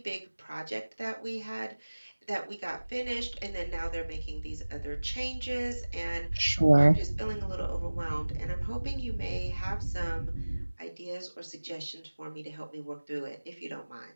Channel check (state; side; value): inverted; both; correlation -1.00